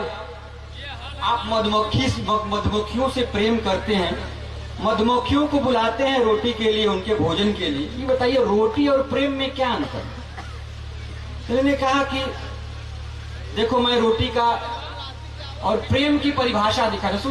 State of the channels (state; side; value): identical; both; correlation 1.00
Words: आप मधुमक्खियों से प्रेम करते हैं, मधुमक्खियों को बुलाते हैं रोटी के लिए, उनके भोजन के लिए, ये बताइए रोटी और प्रेम में क्या अंतर है? तो मैंने कहा कि देखो मैं रोटी का और प्रेम की परिभाषा दिखा रहा,